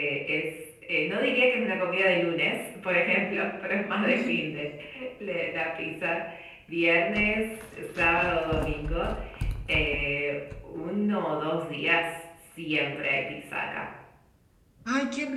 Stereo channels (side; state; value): both; identical; correlation 1.00